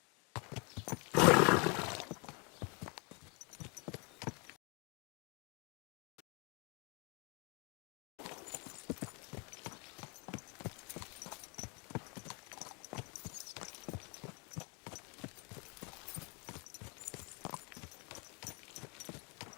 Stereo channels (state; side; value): quieter; right; 32.4 dB